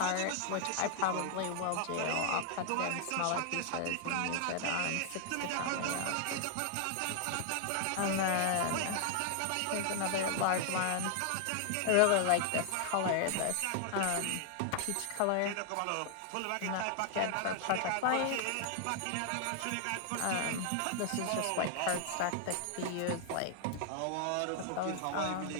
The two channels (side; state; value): both; different; correlation 0.00